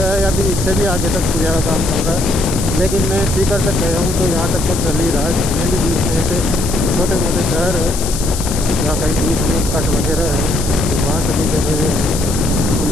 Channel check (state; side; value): noise; left; hiss, 7 dB below the sound